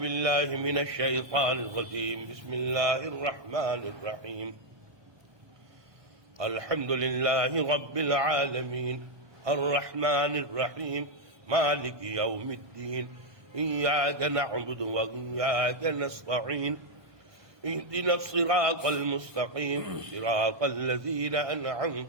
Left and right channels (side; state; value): left; late; 1.2 ms